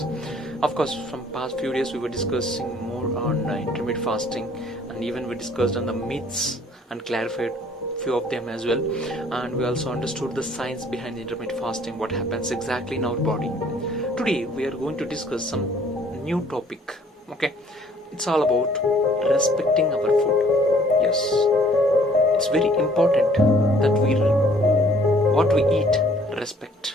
Of course, from past few days we were discussing more on intermittent fasting, and even we discussed on the myths and clarified few of them as well, and we also understood the science behind intermittent fasting, what happens exactly in our body. Today we are going to discuss some new topic. Okay, it's all about respecting our food. Yes, it's very important that what we eat respect.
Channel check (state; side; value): normal; both; correlation 0.58